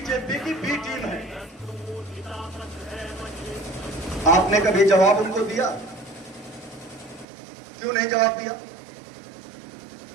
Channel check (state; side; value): drops out; left; at 7.2 s